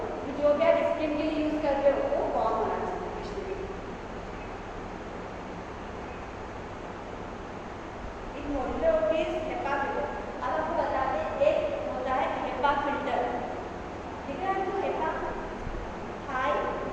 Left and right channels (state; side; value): identical; both; correlation 1.00